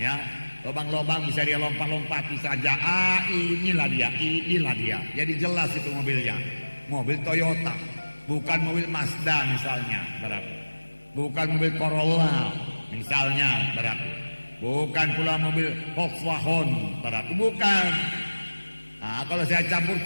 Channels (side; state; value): both; inverted; correlation -1.00